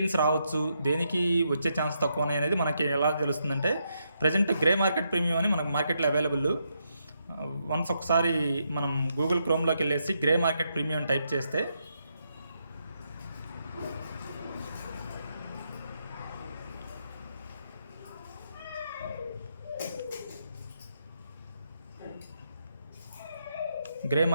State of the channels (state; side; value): inverted; both; correlation -0.79